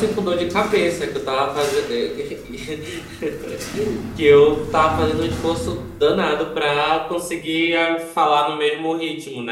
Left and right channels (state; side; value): identical; both; correlation 1.00